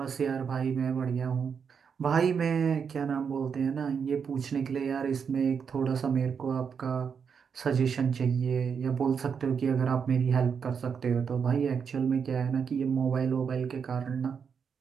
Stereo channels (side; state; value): left; quieter; 6.6 dB